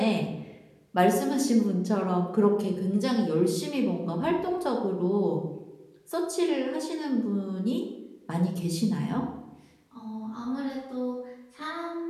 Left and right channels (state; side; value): identical; both; correlation 1.00